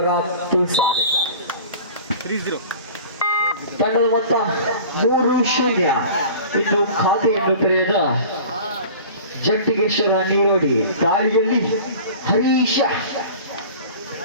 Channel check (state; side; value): inverted; both; correlation -0.41